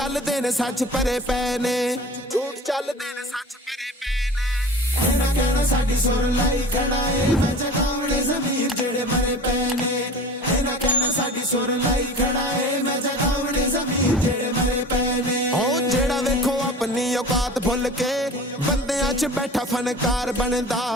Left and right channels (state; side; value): normal; both; correlation 0.39